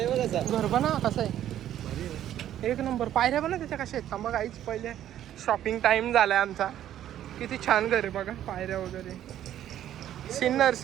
बघ कसं घर बना कसं आहे, 1 नंबर. पायऱ्या बना त्याच्या कशा आहेत मग आईच. पहिले शॉपिंग टाइम झालाय आमचा. किती छान घर आहे बघा, पायऱ्या वगैरे. सिन्नर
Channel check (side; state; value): left; quieter; 11.5 dB